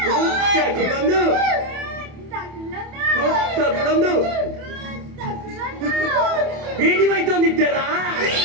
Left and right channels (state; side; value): late; left; 28 ms